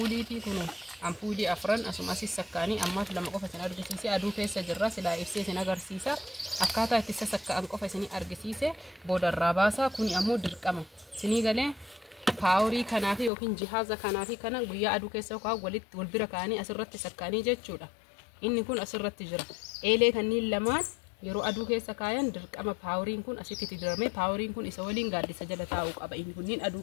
kun ampuulii afran asumas sakkaanii ammaaf lama qofa isin argisiise aduu keessa jirra silaa ibsee isin agarsiisa akkaataa itti sassakkaan qofa isin argisiise boodarraa baasaa. Kuni ammoo dirqama isinii galee paaworii kanaafi yookiin jihaaza kanaafi kana guyyaa aduu keessa yookaan walitti wal bira kaanii asirratti sakkaanii jechuudha. Inni kun asirratti jira. Eelee kanniin lamaan yeroo aduu keessa kaayan dirqama paaworiin kun asitti diramee paaworiin kun isa waliin gaaddisa jala taa'uu qaba. Inni kunniin aduu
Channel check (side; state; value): right; drops out; at 13.3 s